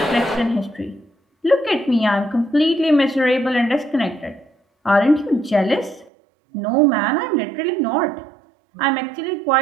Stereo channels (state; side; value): drops out; left; at 6.1 s